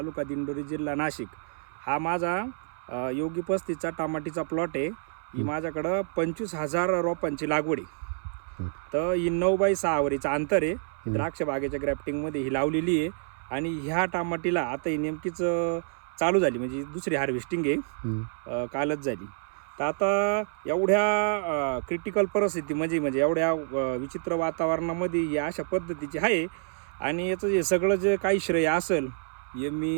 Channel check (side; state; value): left; silent; 59 dB below the other